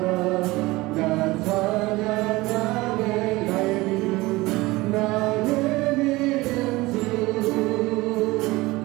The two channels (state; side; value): quieter; left; 20.7 dB